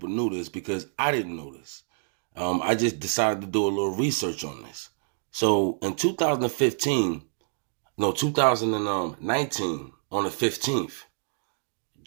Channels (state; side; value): silent; left; digital silence